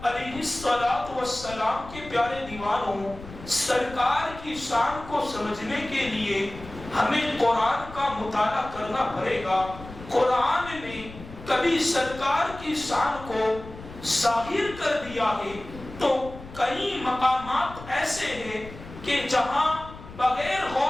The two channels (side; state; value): left; noise; rumble, 15 dB below the sound